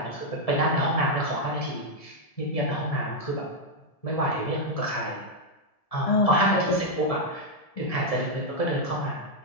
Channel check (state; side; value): late; right; 1.7 ms